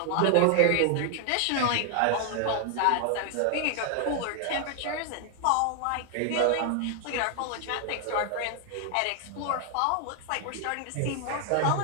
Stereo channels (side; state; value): both; different; correlation 0.00